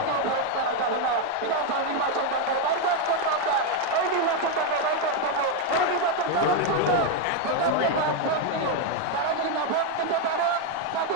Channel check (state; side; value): different; both; correlation 0.02